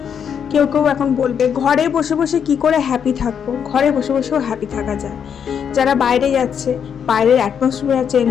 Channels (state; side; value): quieter; right; 7.7 dB